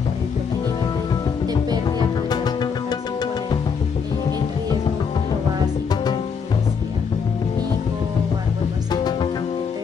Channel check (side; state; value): right; quieter; 6.1 dB